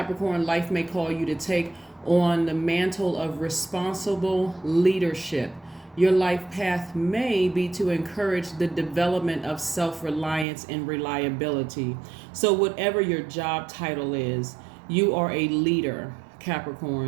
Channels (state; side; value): drops out; left; at 10.5 s